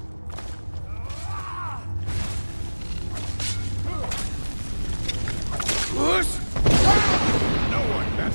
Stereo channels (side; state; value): both; inverted; correlation -1.00